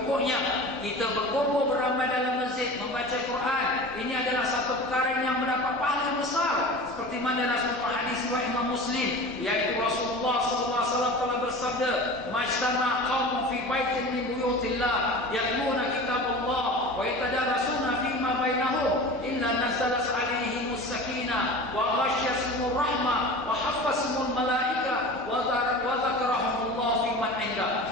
kita berkumpul beramai dalam masjid membaca Quran, ini adalah satu perkara yang mendapat pahala besar. Seperti mana dalam satu hadis riwayat Imam Muslim, yaitu Rasulullah SAW telah bersabda, "Majtama qaumun fi baitin min buyutillah yatluna kitabullah wa yatadarasuna fima bainahum illa nazalat alaihimus sakinah wa ghasyiyatuhumur rahmah wa haffazahumul malaika wa dzakarahumullah fi man inda.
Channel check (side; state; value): both; normal; correlation 0.35